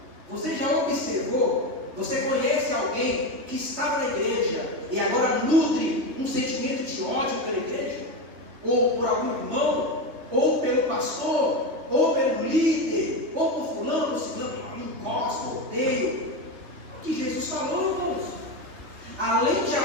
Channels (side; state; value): left; late; 3.2 ms